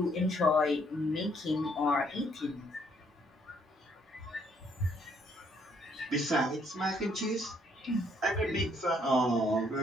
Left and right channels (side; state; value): both; normal; correlation 0.68